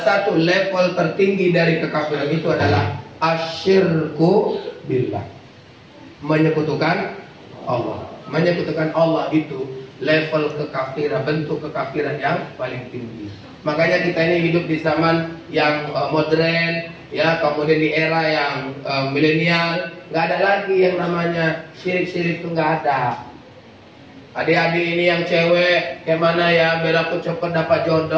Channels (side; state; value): both; identical; correlation 1.00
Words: satu level tertinggi dari kekafiran itu adalah asyirku billah, menyekutukan Allah. Menyekutukan Allah itu level kekafiran, bentuk kekafiran yang paling tinggi. Makanya kita ini hidup di zaman yang modern, ya, kemudian di era yang milenial, nggak ada lagi yang namanya syirik-syirik, itu nggak ada. Adik-adik ini yang cewek, kayak mana ya, biar aku cepet dapat